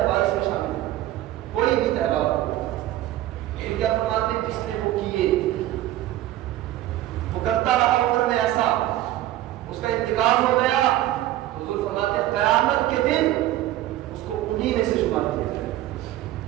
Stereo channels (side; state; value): left; quieter; 14.5 dB